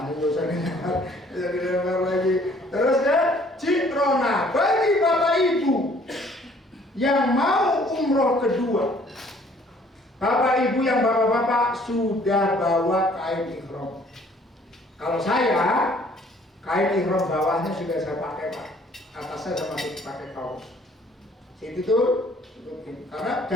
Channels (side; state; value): both; normal; correlation 0.59